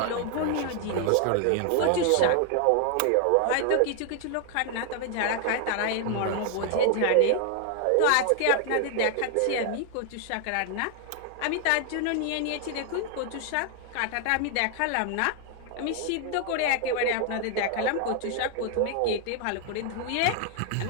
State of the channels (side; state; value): both; different; correlation 0.00